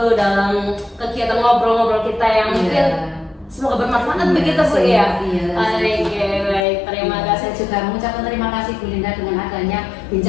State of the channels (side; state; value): right; drops out; at 6.6 s